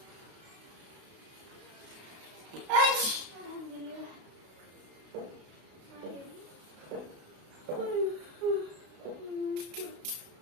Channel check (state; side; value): late; left; 32 ms